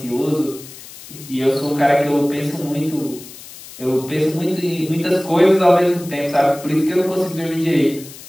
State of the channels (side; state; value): left; noise; hiss, 17 dB below the sound